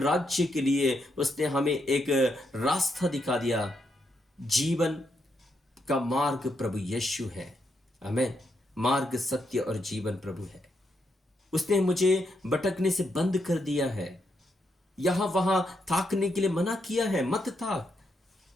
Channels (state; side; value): normal; both; correlation 0.80